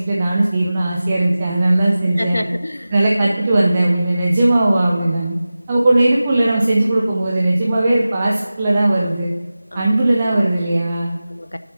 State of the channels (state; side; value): inverted; both; correlation -0.96